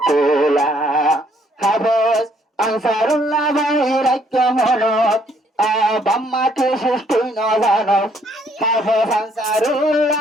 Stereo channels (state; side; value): normal; both; correlation 0.67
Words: খোলা। হাফেজ আনসারুল্লাহ ভাইয়ের ঐক্য মনত বাম্মাকে সৃষ্টি ন জানো। হাফেজ